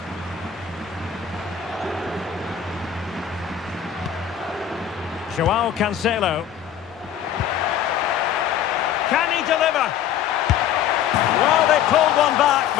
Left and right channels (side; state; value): right; quieter; 9.4 dB